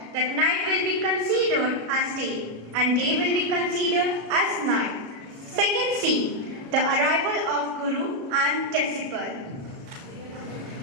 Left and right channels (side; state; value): left; late; 37 ms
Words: that night will be considered as day and day will be considered as night. Second scene, the arrival of Guru and disciple.